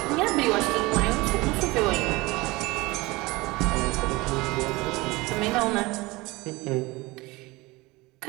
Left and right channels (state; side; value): quieter; left; 22.3 dB